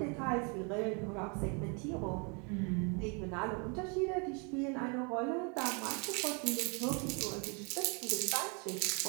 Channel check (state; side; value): quieter; left; 34.3 dB